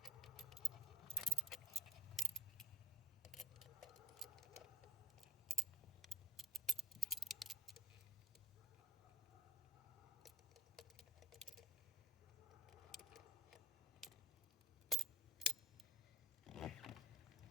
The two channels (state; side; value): normal; both; correlation 0.37